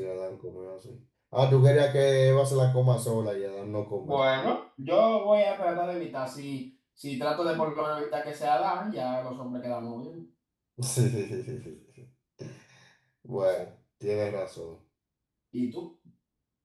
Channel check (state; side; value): identical; both; correlation 1.00